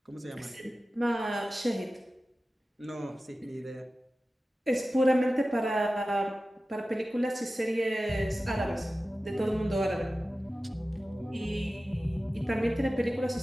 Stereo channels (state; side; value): normal; both; correlation 0.95